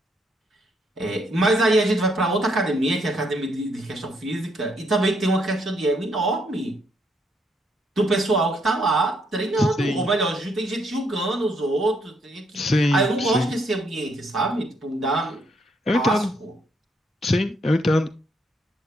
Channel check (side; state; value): both; normal; correlation 0.73